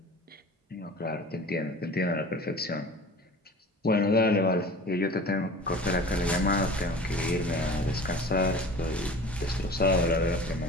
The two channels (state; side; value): normal; both; correlation 0.40